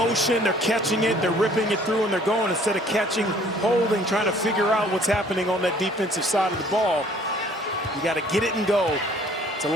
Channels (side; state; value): both; normal; correlation 0.56